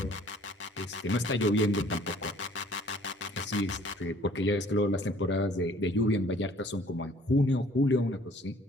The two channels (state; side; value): normal; both; correlation 0.56